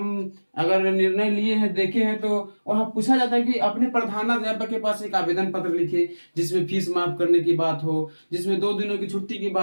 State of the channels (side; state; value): both; inverted; correlation -1.00